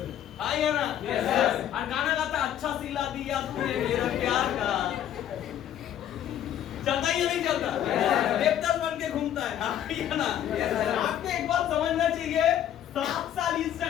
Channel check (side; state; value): right; quieter; 10.7 dB